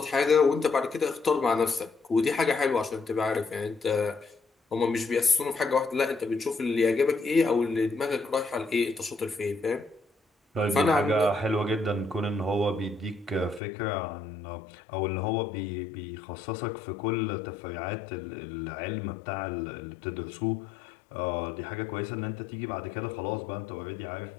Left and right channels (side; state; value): right; drops out; at 13.6 s